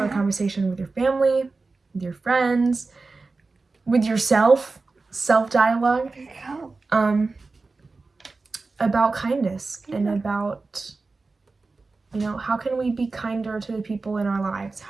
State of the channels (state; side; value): quieter; left; 3.8 dB